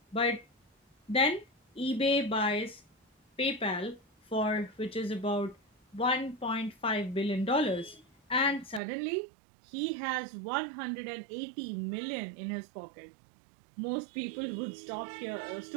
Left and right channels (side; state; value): left; drops out; at 8.8 s